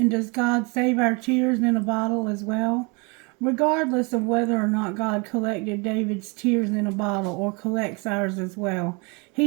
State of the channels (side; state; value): left; quieter; 30.1 dB